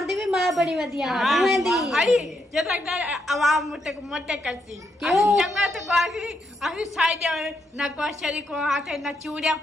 दी भी माँ बड़ी वधिया तुम्हें दी। अरे जब तक आवाम मोटे करती क्यों? जंगल तो बाकी अभी साइड ना को शरीर को हाथे ना चूड़िया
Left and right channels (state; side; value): normal; both; correlation 0.79